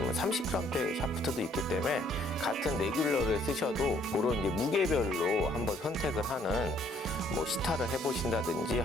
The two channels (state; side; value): normal; both; correlation 0.64